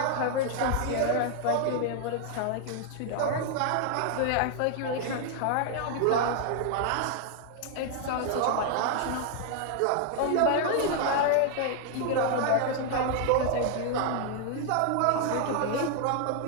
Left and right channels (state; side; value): different; both; correlation 0.00